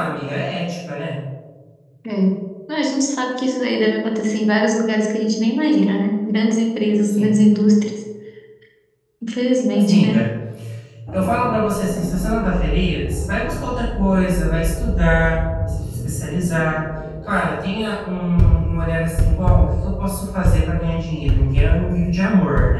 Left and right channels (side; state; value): both; identical; correlation 1.00